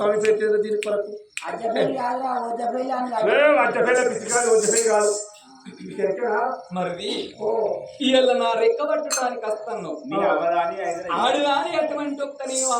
పెట్టేది దీని కొరకు అజ్జపల్లి కాదురా వజ్జపల్లి అని కాదు. రజ్జపల్లి పిచ్చికాదు వజ్జపల్లి కాదు మరిది ఇవాళ నా రెక్క పట్టడానికి వస్తాను ఆడుగాని అటువంటి ఒక్క నేను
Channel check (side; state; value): both; identical; correlation 1.00